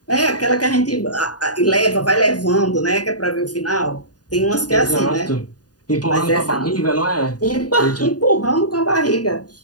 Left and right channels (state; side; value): late; right; 0.68 ms